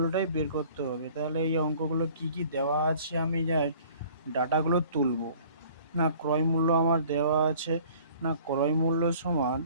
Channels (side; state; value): both; inverted; correlation -0.51